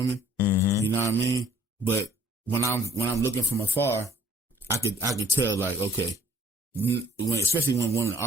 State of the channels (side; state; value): both; normal; correlation 0.56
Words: You know what I mean? But when I'm looking from afar, I could tell, like, okay, especially when